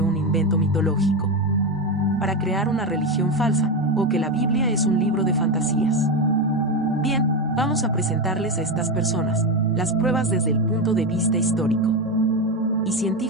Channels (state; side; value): normal; both; correlation 0.13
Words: un invento mitológico para crear una religión falsa, o que la Biblia es un libro de fantasías. Bien, vamos a presentarles a estas personas las pruebas desde el punto de vista histórico y